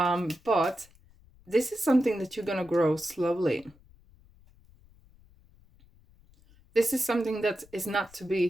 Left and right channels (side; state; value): left; noise; rumble, 28 dB below the sound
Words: this is something that you're going to grow slowly. This is something that is not to